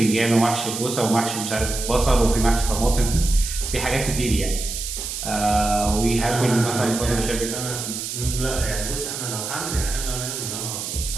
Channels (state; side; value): noise; right; hiss, 5 dB below the sound